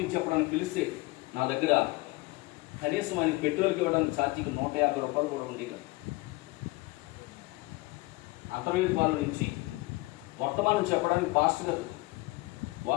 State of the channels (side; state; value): right; quieter; 22.1 dB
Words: చెప్పడానికి పిలిస్తే నా దగ్గర కనీసం ఆయన పెట్రోల్కి ఇవ్వడానికి ఛార్జీకి 150 రూపాయలు కూడా ఉండేది. అంతర్వేదిపాల నుంచి వర్తమానం చెప్పడానికి పాస్టర్ గారు